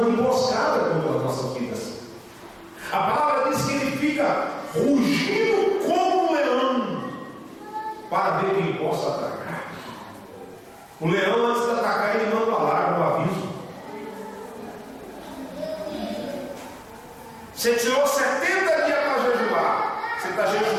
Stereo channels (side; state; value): both; identical; correlation 1.00